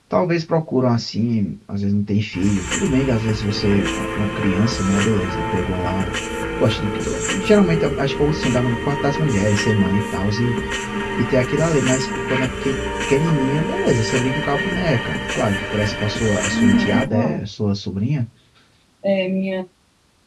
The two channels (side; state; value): both; identical; correlation 1.00